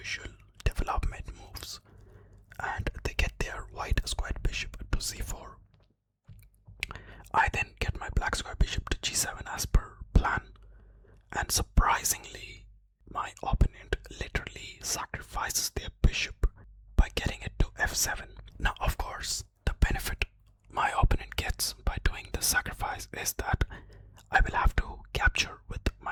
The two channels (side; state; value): both; identical; correlation 1.00